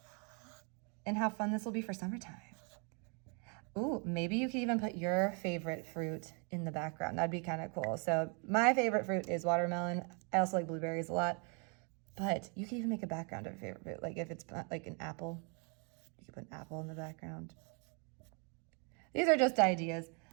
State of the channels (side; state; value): left; quieter; 35.9 dB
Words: and how fun this will be for summertime. Ooh, maybe you could even put your favorite fruit in the background. That'd be kind of cool. So my favorite fruit is watermelon. I also like blueberries a lot, but you can even make a background of your favorite fruit. Like if it's like an apple, you can put an apple in the background. These are just ideas.